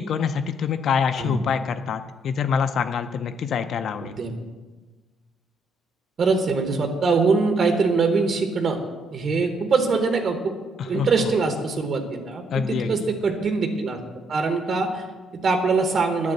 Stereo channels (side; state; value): both; normal; correlation 0.72